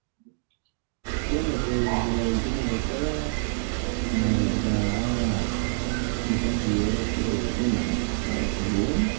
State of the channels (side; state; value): left; silent; digital silence